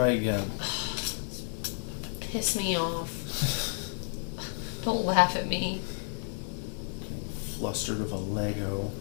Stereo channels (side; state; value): right; silent; 57 dB below the other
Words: again. Piss me off. Don't laugh at me. Flustered of a Lego.